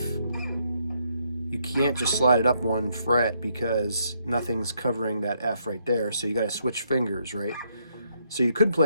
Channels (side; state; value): both; inverted; correlation -0.74